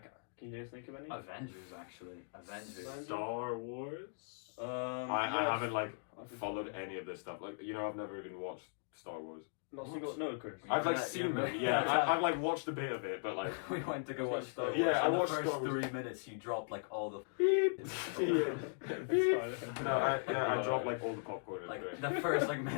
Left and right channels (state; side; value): silent; right; digital silence